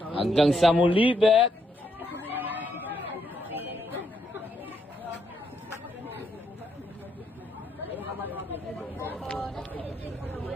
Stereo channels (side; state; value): both; normal; correlation 0.76